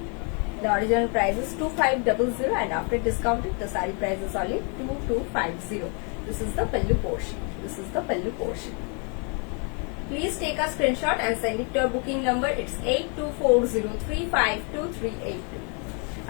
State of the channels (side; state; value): right; quieter; 36.9 dB